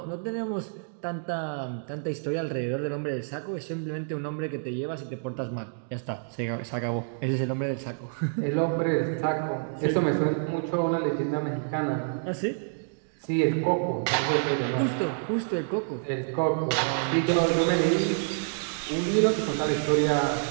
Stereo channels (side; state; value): left; silent; digital silence